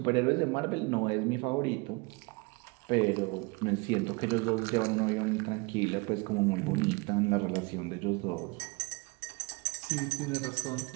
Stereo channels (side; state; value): left; quieter; 27.7 dB